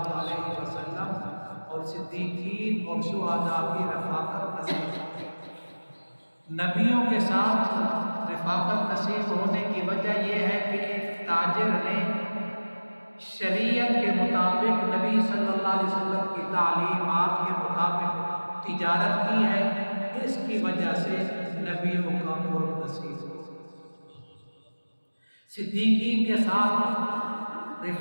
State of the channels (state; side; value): inverted; both; correlation -1.00